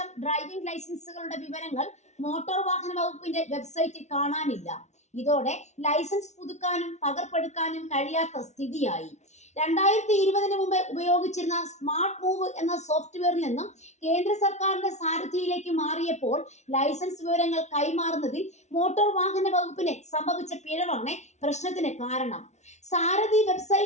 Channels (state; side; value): late; right; 0.32 ms